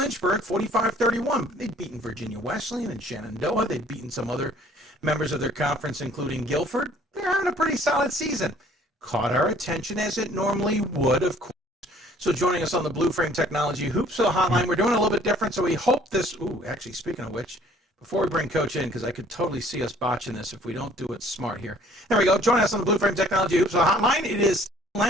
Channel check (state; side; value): normal; both; correlation 0.56